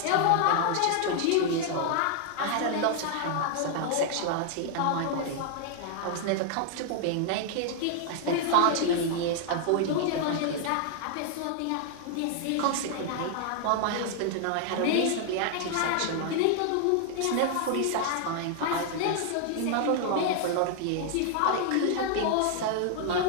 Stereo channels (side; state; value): both; different; correlation 0.00